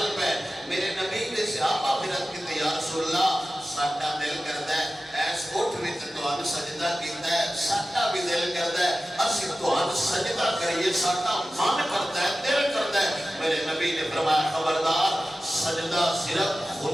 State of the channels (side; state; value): both; normal; correlation 0.95